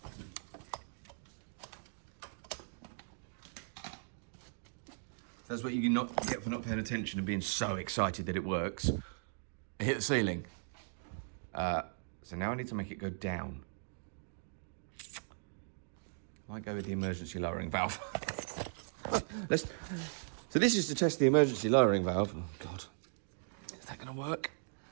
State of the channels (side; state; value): left; silent; digital silence